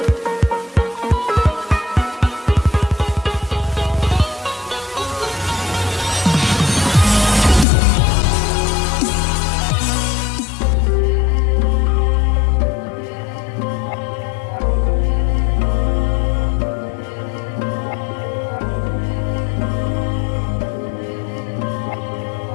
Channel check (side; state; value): right; drops out; at 7.7 s